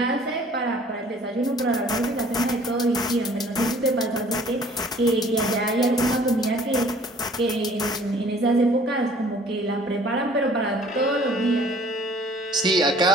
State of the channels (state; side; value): normal; both; correlation 0.54